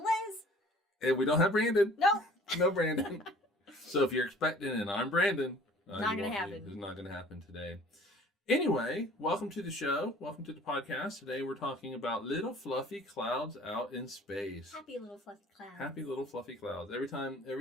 And we don't have Brandon. Nope. No Brandon. So if you're expecting and I'm Brandon, not going to happen. It's not going to happen today. Anyway, welcome to the show. Welcome to the podcast. Today we're talking about little fluffy clouds out in space. Happy little fluffy clouds. Happy little fluffy clouds. Every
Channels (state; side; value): normal; both; correlation 0.51